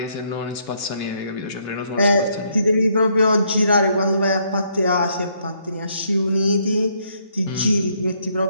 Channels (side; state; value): both; inverted; correlation -0.71